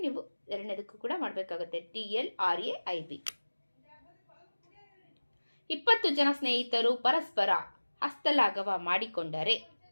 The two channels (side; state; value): both; inverted; correlation -1.00